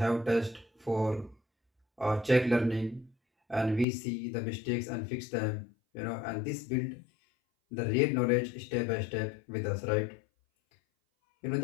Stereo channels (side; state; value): right; drops out; at 3.9 s